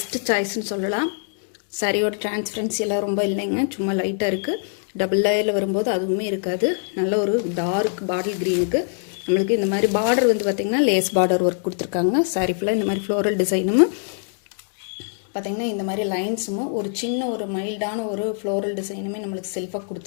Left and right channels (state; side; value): silent; right; 63 dB below the other